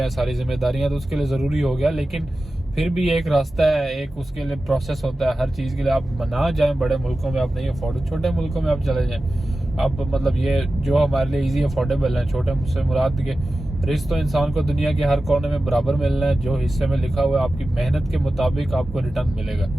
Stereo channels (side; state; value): both; normal; correlation 0.94